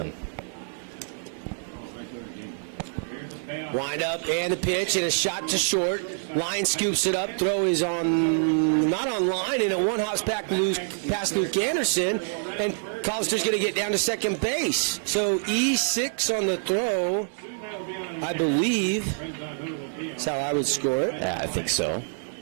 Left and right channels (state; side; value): silent; left; digital silence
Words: Wind up and the pitch and a shot to short. Line scoops it up. Throw is not on line, and a one-house past Luke Anderson. And Collister's going to get down to second base. So E6 on the throw, I believe. That's how I would score it. Yeah, I think so.